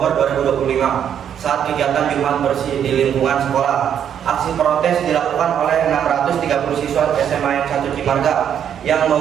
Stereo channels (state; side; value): quieter; left; 9.0 dB